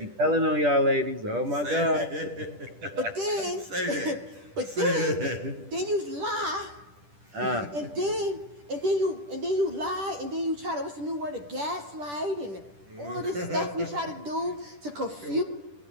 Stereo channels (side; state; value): left; late; 10 ms